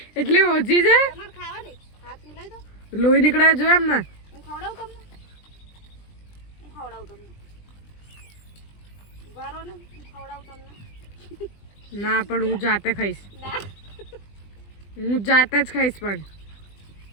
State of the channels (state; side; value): late; right; 20 ms